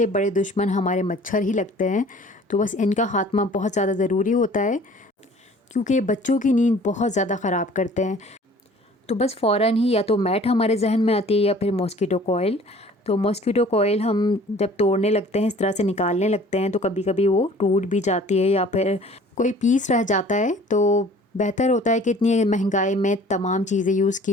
बड़े दुश्मन हमारे मच्छर ही लगते हैं। तो बस इनका खात्मा बहुत ज़्यादा ज़रूरी होता है, क्योंकि बच्चों की नींद बहुत ज़्यादा ख़राब करते हैं। तो बस फ़ौरन ही या तो मैट हमारे जहन में आती है या फिर मॉस्किटो कोइल। तो मॉस्किटो कोइल हम जब तोड़ने लगते हैं, इस तरह से निकालने लगते हैं, तो कभी कभी वो टूट भी जाती है या फिर कोई पीस रह जाता है। तो बेहतर होता है कि इतनी महंगाई में तमाम चीज़ें यूज़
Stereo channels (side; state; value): both; normal; correlation 0.50